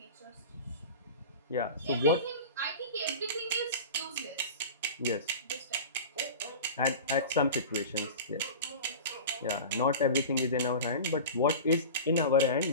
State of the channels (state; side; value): inverted; both; correlation -0.33